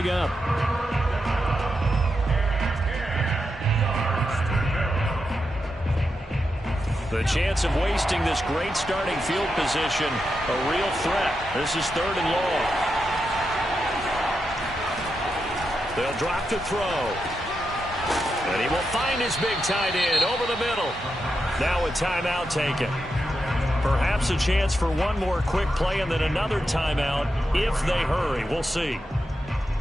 up. The chance of wasting this great starting field position, a real threat. This is 3rd and long. They'll drop to throw. And he will find his big tight end over the middle. Now a timeout taken. Perhaps a chance for one more quick play and then another timeout if they hurry. We'll see.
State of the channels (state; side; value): normal; both; correlation 0.86